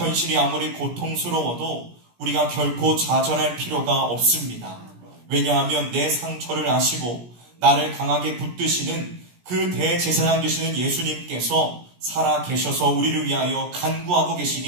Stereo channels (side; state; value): left; late; 17 ms